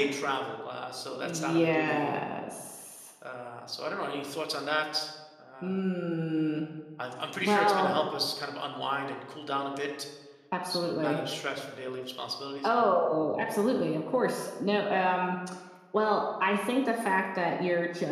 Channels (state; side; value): identical; both; correlation 1.00